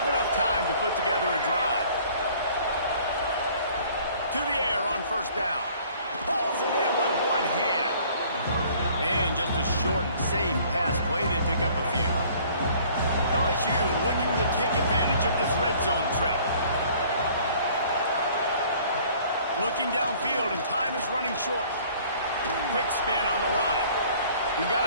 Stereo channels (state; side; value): inverted; both; correlation -0.54